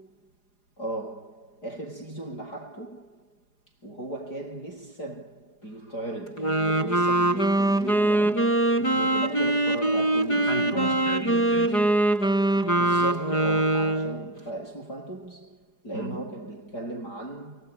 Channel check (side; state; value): right; late; 4.9 ms